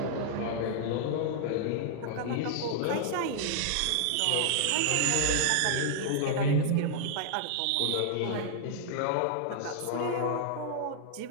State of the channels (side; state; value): both; different; correlation -0.01